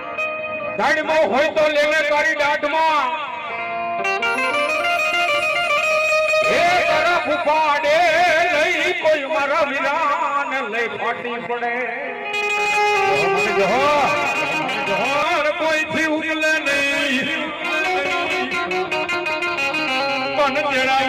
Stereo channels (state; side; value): identical; both; correlation 1.00